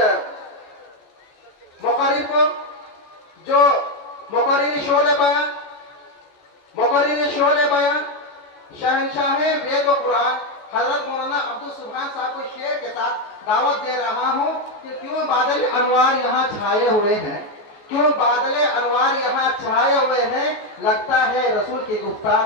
مقرر کو جو مقرر شعلِ بیان شہنشاہ وید و قرآن حضرت مولانا عبدالسبحان صاحب کو شعر کے ساتھ دعوت دے رہا ہوں کہ کیوں بادل انوار یہاں چھائے ہوئے ہیں، کیوں بادل انوار یہاں چھائے ہوئے ہیں، لگتا ہے رسول کی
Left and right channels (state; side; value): late; right; 14 ms